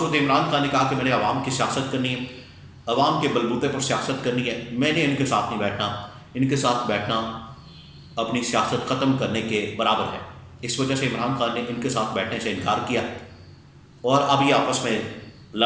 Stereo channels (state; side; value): identical; both; correlation 1.00